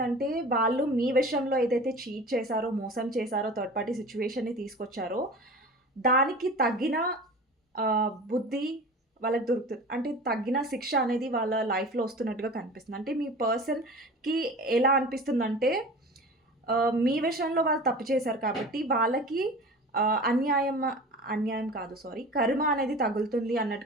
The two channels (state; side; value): normal; both; correlation 0.37